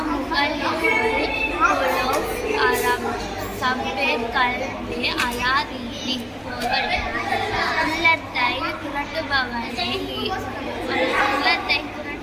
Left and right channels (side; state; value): both; identical; correlation 1.00